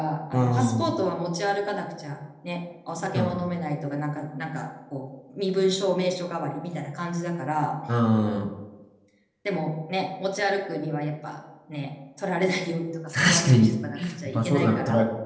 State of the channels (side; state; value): both; identical; correlation 1.00